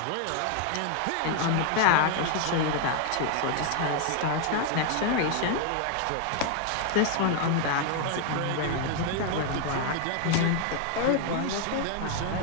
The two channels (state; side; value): different; both; correlation 0.00